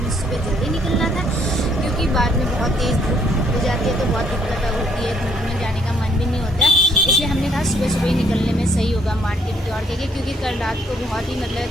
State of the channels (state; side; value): normal; both; correlation 0.68